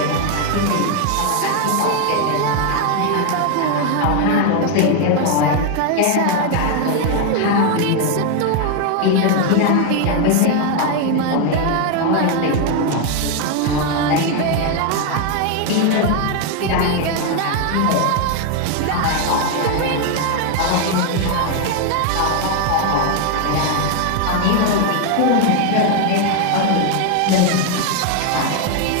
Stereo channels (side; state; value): both; different; correlation 0.01